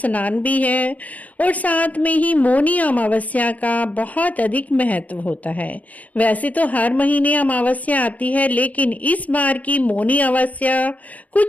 भी है और साथ में ही मौनी अमावस्या का बहुत अधिक महत्व होता है। वैसे तो हर महीने अमावस्या आती है, लेकिन इस बार की मौनी अमावस्या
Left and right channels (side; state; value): right; late; 0.073 ms